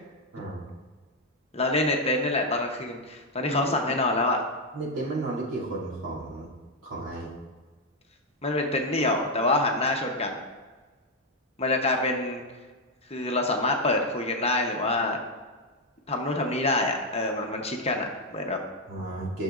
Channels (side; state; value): both; normal; correlation 0.02